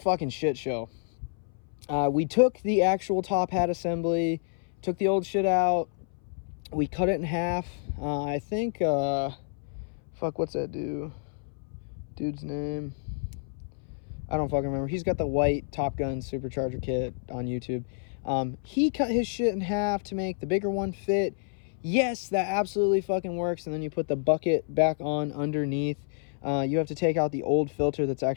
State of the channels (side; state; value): right; silent; 59 dB below the other